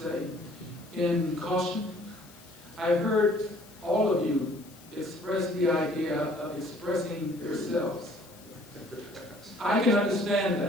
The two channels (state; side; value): noise; left; hiss, 23 dB below the sound